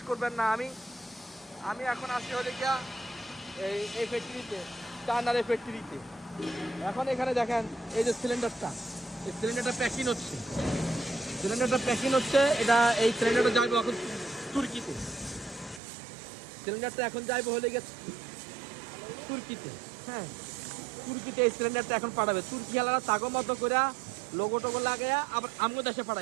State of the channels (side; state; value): left; drops out; at 15.8 s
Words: করবেন না, আমি এখন আসি হলে গিয়া এই ফ্যাক্টরিতে, চায়নার এই ফ্যাক্টরিতে। এখন এখানে দেখেন এই যে সিলিন্ডারটা, এই সিলিন্ডারটা প্যাকিং হচ্ছে, এটা এই সিলিন্ডারটা যাইবে এখন তুর্কিতে। সিলিন্ডারটা এখন যাইবে হলে গেছে তুর্কিতে। হ্যাঁ, তুর্কিতে এই সিলিন্ডারটা এখন পাঠাবে। তুর্কি হালারা তাগো মতো করে লোগো টোগো লাগাইয়া আবার আমগো দেশে